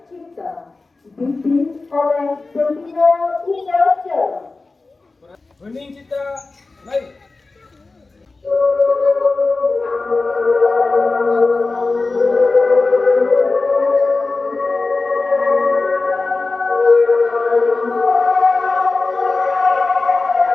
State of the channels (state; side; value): quieter; right; 3.6 dB